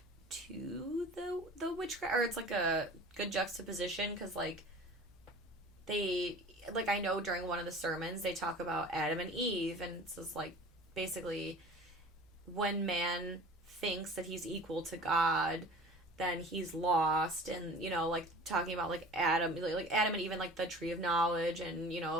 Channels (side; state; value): both; normal; correlation 0.42